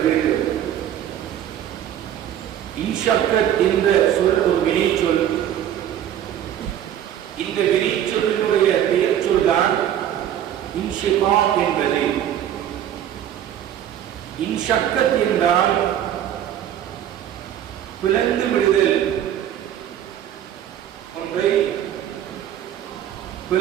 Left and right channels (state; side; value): quieter; left; 10.7 dB